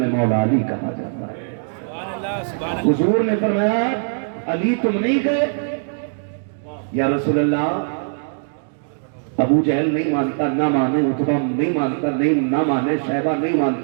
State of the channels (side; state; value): left; silent; 65 dB below the other